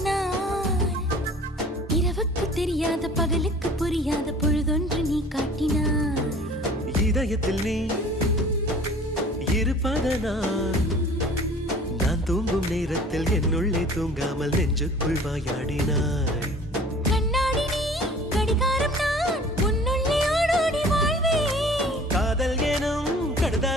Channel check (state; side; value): normal; both; correlation 0.48